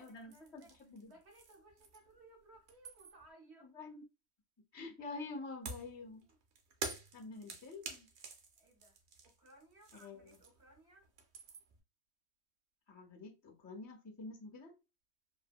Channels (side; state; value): left; late; 3.1 ms